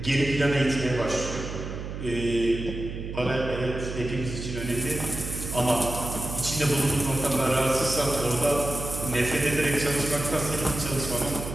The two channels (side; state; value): right; noise; hum, 7 dB below the sound